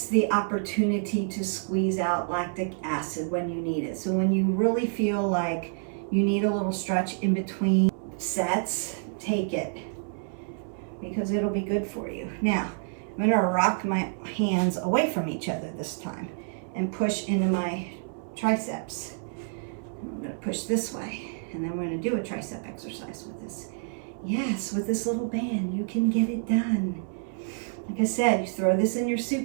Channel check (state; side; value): silent; left; 58 dB below the other